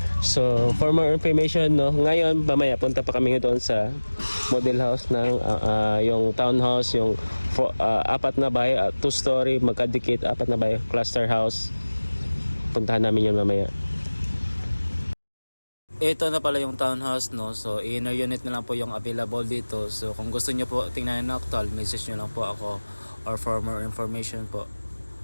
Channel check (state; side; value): inverted; both; correlation -1.00